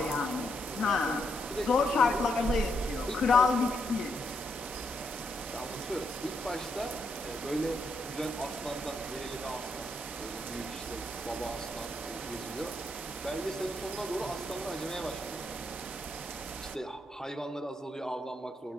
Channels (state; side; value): normal; both; correlation 0.78